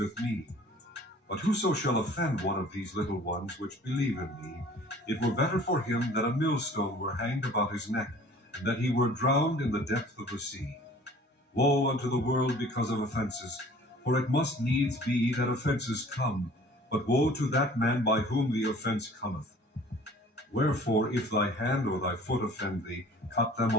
me. But whoso shall offend one of these little ones which believe in me, it were better for him that a millstone were hanged about his neck, and that he were drowned in the depth of the sea. Woe unto the world because of offenses, for it must needs be that offenses come, but woe to that man by whom the offense cometh. Wherefore, if thy hand or thy foot offend thee, cut them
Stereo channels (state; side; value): normal; both; correlation 0.49